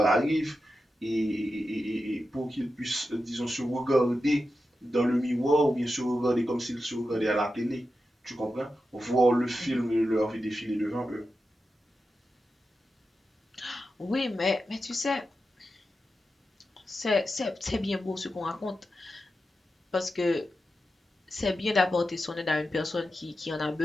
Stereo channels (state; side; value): normal; both; correlation 0.90